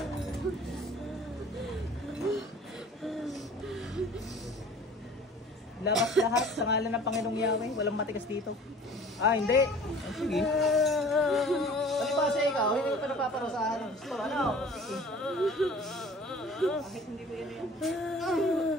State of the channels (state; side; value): normal; both; correlation 0.46